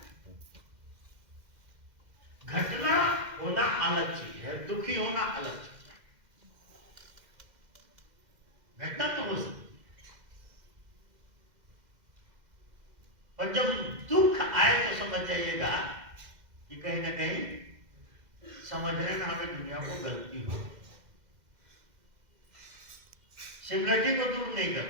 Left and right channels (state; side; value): late; left; 2.0 ms